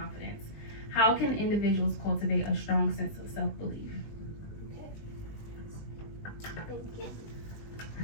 How can individuals cultivate a strong sense of self-belief? Thank you.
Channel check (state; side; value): late; right; 19 ms